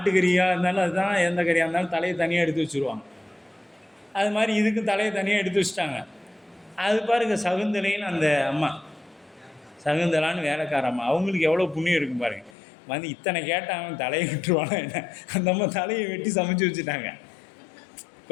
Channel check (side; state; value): right; drops out; at 12.6 s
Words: இருந்தாலும் அதுதான், எந்த கறியாக இருந்தாலும் தலையை தனியாக எடுத்து வச்சுருவாங்க. அது மாதிரி இதுக்கு தலையை தனியாக எடுத்து வச்சுட்டாங்க. அது பாருங்க சகுந்தலைன்னு அந்த அம்மா, சகுந்தலான்னு வேலைக்கார அம்மா, அவங்களுக்கு எவ்வளோ புண்ணியம் இருக்கும் பாருங்கள். வந்து இத்தனை கேட்டாங்க, தலையை விட்டுருவாங்க என்ன, அந்த அம்மா தலையை வெட்டி சமைச்சு வச்சுட்டாங்க.